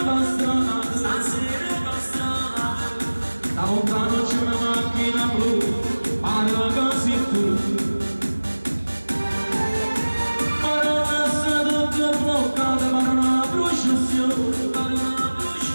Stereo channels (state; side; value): inverted; both; correlation -1.00